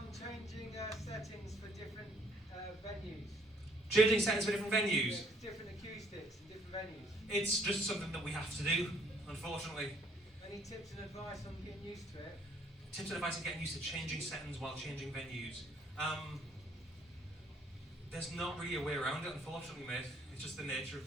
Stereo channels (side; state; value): both; normal; correlation 0.63